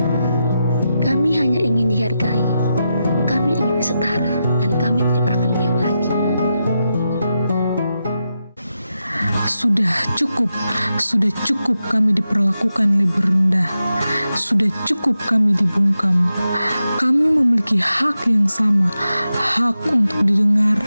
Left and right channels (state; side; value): inverted; both; correlation -0.88